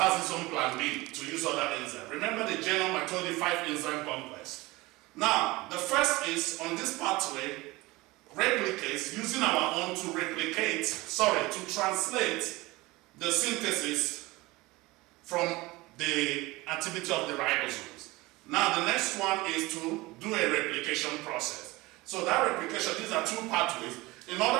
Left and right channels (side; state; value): left; quieter; 21.3 dB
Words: its own plan B to use other enzymes. Remember the genome, I told you 5 enzyme complex. Now, the first is on this pathway, replicates, using our own to to translate the synthesis from the activity of the ribosomes. Now, the next one is to do a replication process. So that replication, these are 2 pathways, in